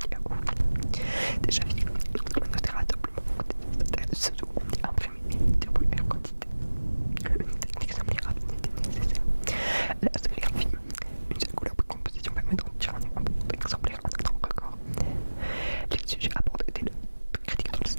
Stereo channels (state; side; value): inverted; both; correlation -1.00